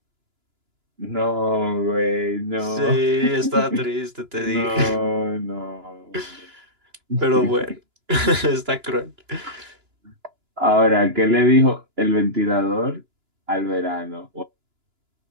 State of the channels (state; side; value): late; left; 2.9 ms